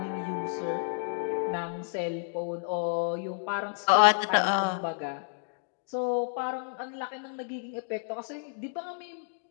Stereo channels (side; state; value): right; silent; 57 dB below the other